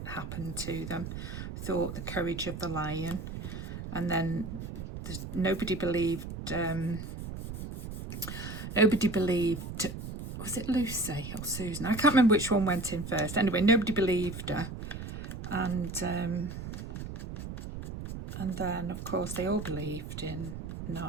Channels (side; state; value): right; noise; rumble, 8 dB below the sound